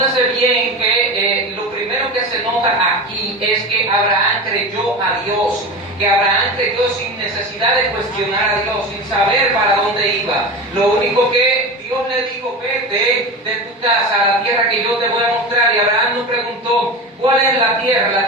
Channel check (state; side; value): normal; both; correlation 0.26